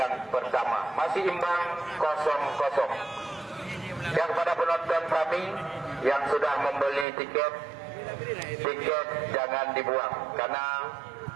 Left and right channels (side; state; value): left; drops out; at 7.1 s